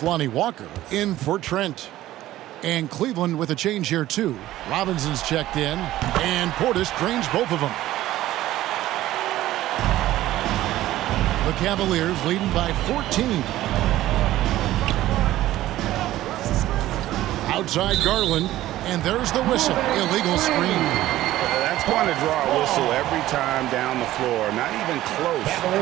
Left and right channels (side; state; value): left; quieter; 14.8 dB